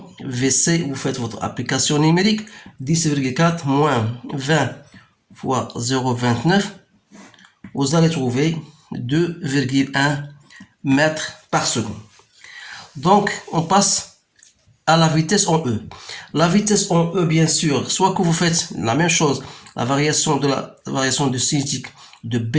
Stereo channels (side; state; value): both; identical; correlation 1.00